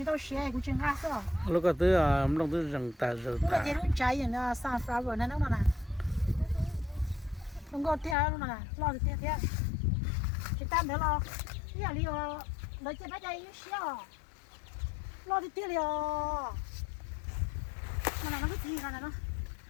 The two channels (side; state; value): right; drops out; at 8.2 s